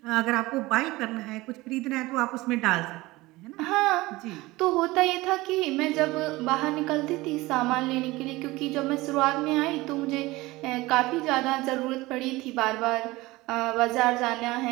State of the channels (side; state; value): left; quieter; 20.1 dB